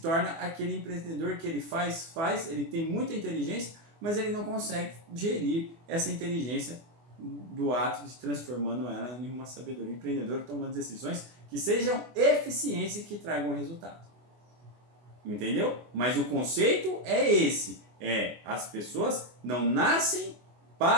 aquele empreendedor que ele faz, ele tem muita inteligência, mas ele não consegue gerir essa inteligência do ato de transformando ela em uma sabedoria empreendedora, tomando decisões que sejam eficientes e que tragam resultado. Entendeu? Mas o conceito é esse. As pessoas não nascem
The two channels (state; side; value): late; left; 24 ms